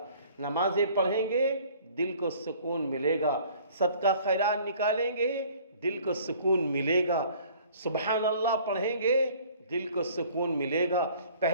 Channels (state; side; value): inverted; both; correlation -0.53